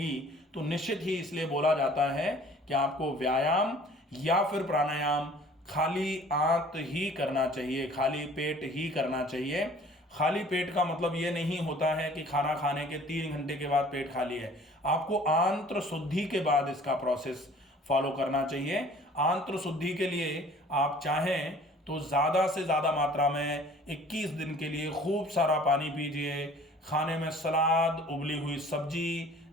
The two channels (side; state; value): both; normal; correlation 0.51